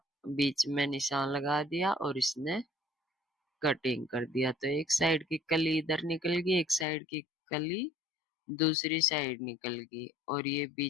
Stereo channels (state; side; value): drops out; right; at 6.9 s